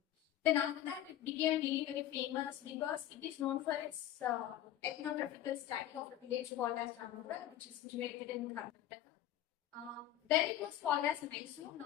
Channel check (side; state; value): right; quieter; 12.4 dB